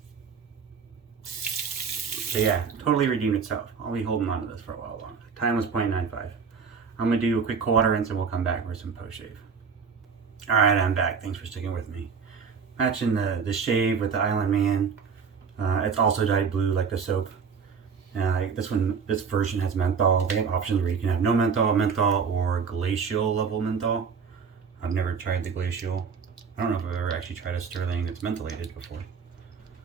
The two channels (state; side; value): quieter; left; 6.1 dB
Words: But yeah, totally redeemed itself. I'll be holding on to this for a while longer. Time was 0.95. I'm gonna do a quick cold water rinse and we'll come back for some post shave. All right, I'm back. Thanks for sticking with me. Matching the shave with the Island Man. It's also dyed blue like the soap. This version has menthol. They have options where you can have no menthol, or glacial level menthol. I've never tried the glacial. I don't know if I've ever actually tried a Stirling that's mentholated before.